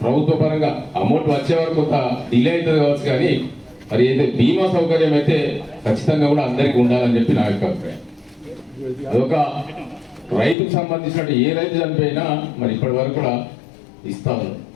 ప్రభుత్వ పరంగా అమౌంట్ వచ్చే వరకు కొంత డిలే అవుతుంది కావచ్చు, కానీ మరి అయితే బీమా సౌకర్యం అయితే ఖచ్చితంగా కూడా అందరికీ ఉండాలని చెప్పి నా యొక్క అభిప్రాయం. అదొక రైతుకు సంబంధించినట్టు ఏ రైతు చనిపోయినా మరి ఇప్పటి వరకు కూడా ఇస్తా ఉన్నారు,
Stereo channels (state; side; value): drops out; right; at 10.6 s